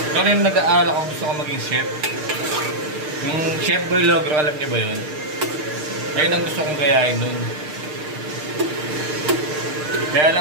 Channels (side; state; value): left; late; 6.6 ms